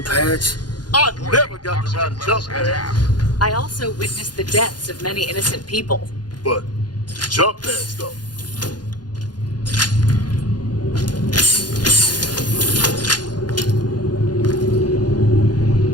pads? I never got to ride a jump pad, I also witnessed the deaths of many innocent people. but jump pads though.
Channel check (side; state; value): right; late; 0.70 ms